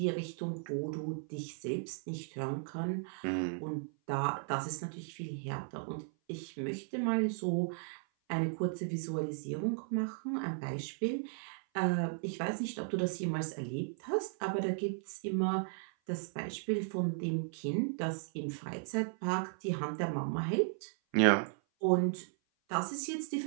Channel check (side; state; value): left; silent; 54 dB below the other